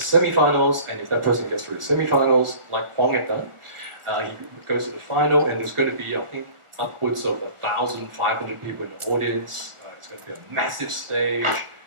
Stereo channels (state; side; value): late; left; 1.4 ms